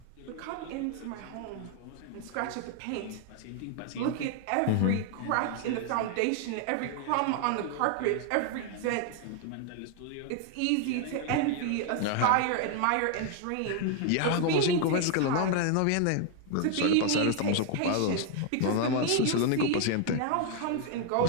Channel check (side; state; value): both; different; correlation 0.00